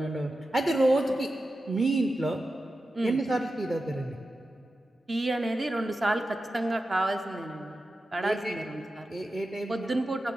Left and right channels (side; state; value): both; normal; correlation 0.92